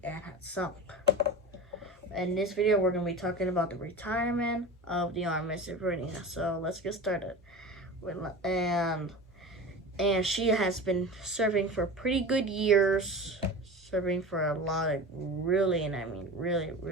and had sunk. In this video, we're going to be talking about the retirement of the RMS Ivernia. So let's get started. And she has been serving for pretty good years. Serving for a lot of really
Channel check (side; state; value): both; normal; correlation 0.31